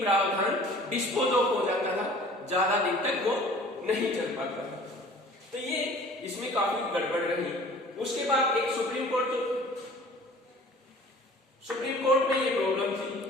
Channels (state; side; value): normal; both; correlation 0.48